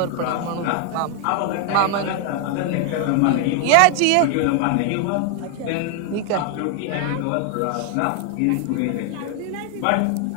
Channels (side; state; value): both; different; correlation 0.00